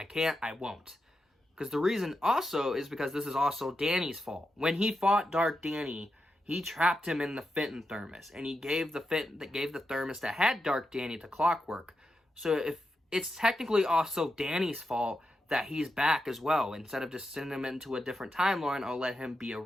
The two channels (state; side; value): normal; both; correlation 0.87